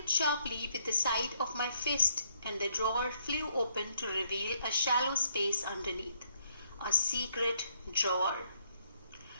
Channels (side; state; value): both; inverted; correlation -0.72